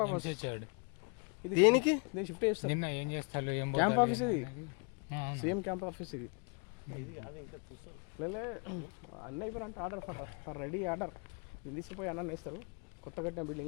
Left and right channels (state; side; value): quieter; right; 37.1 dB